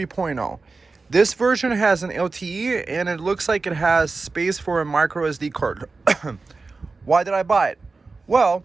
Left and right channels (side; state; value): left; quieter; 3.9 dB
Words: This version has an LTE and it looks like it has space for a micro SD card. Why did I buy it? Well,